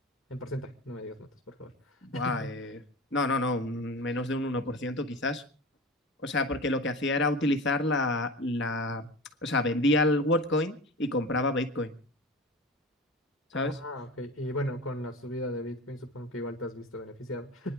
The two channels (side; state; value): both; normal; correlation 0.32